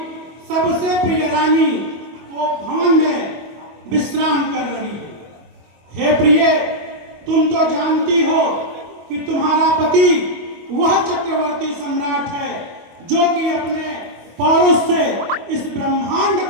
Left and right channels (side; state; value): left; late; 25 ms